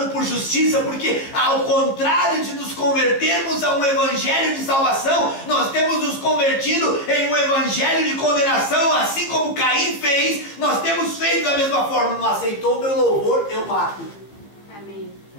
por justiça, porque ao contrário de nos convertermos a um evangelho de salvação, nós temos nos convertido em um evangelho de condenação, assim como Caim fez. Nós temos feito da mesma forma. Não aceitou o meu louvor, eu mato. Amém.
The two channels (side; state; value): right; late; 15 ms